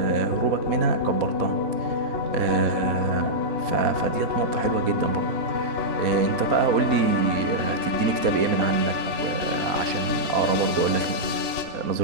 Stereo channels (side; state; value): left; late; 4.1 ms